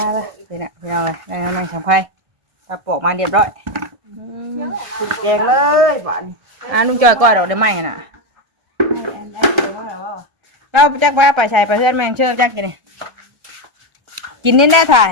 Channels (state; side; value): late; left; 1.3 ms